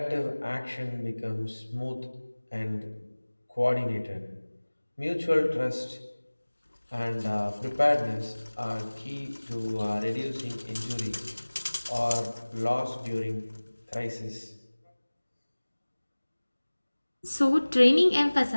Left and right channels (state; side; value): inverted; both; correlation -1.00